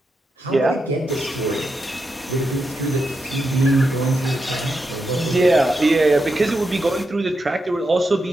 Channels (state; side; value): normal; both; correlation 0.86